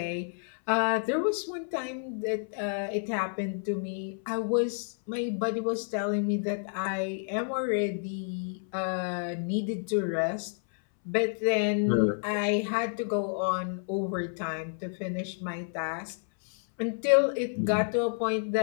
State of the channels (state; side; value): silent; right; 58 dB below the other